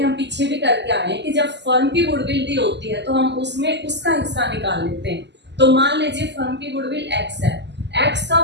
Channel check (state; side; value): late; left; 0.50 ms